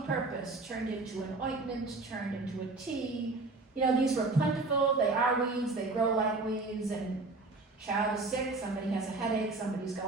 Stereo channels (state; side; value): quieter; left; 3.4 dB